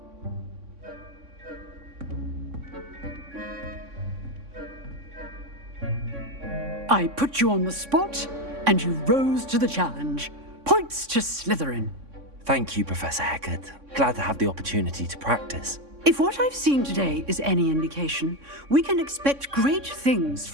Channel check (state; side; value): late; left; 3.6 ms